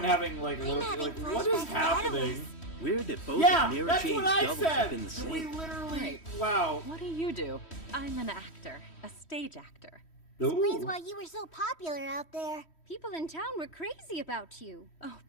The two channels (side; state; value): right; late; 3.1 ms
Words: having, like, I'm look, having like, what is flashbacks to happening? Weird that both Yeah, of Mira that's Jane's what I doubles have said! been the We same. literally... Wow. What do you do? I'm an actor, a stage actor. Explains Ooh. why you were so popular out there. People in town were crazy about you. Oh,